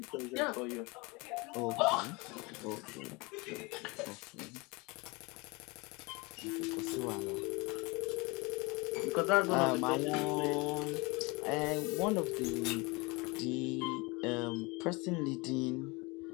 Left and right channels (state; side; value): quieter; right; 26.2 dB